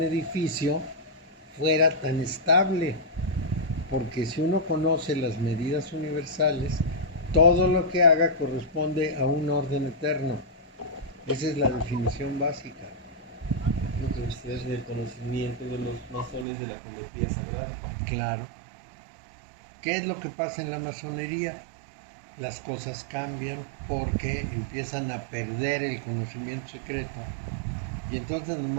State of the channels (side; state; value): left; drops out; at 16.4 s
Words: edificio fuera tan estable? Porque si uno conoce las medidas universales, todo lo que haga corresponde a un orden eterno. Esa es la definición básica. Entonces, el conocimiento de los masones de la geometría sagrada. Claro. ¿Qué es lo que pasa en la masonería? Las cosas cambian porque empiezan a perder el conocimiento secreto. Y entonces